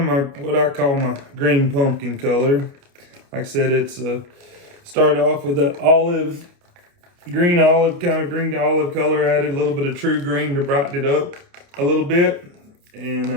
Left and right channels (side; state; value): left; late; 29 ms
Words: what I call my green pumpkin color. Like I said, it's started off with that green to olive color. Added a little bit of true green to brighten it up a little bit,